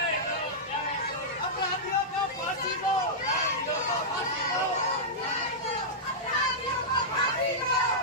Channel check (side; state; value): both; normal; correlation -0.11